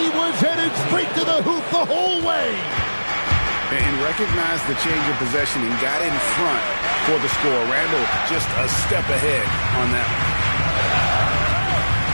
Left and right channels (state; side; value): inverted; both; correlation -1.00